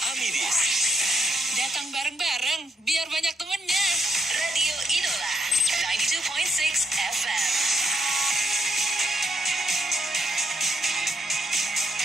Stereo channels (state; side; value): normal; both; correlation 0.76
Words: Amidis. Datang bareng-bareng, biar banyak temennya. Radio Idola 92.6 FM.